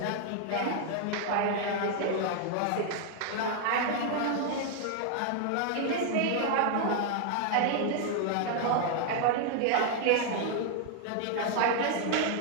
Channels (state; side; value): different; both; correlation 0.00